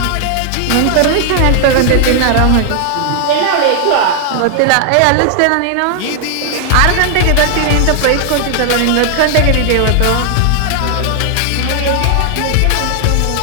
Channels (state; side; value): different; both; correlation 0.00